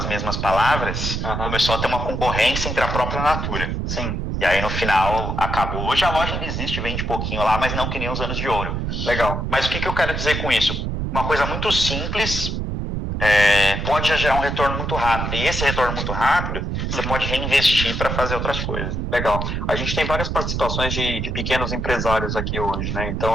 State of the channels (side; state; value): right; noise; rumble, 2 dB below the sound